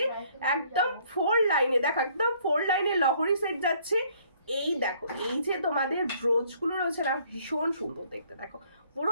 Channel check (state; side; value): inverted; both; correlation -0.62